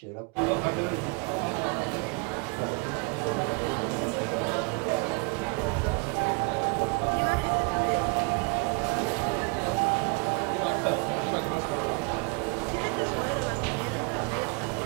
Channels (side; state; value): left; quieter; 33.1 dB